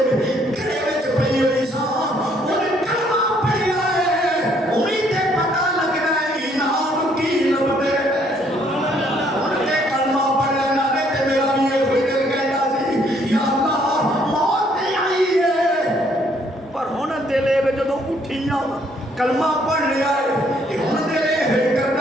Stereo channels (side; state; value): both; normal; correlation 0.66